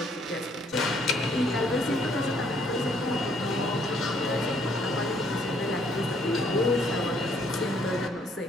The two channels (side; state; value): both; normal; correlation 0.66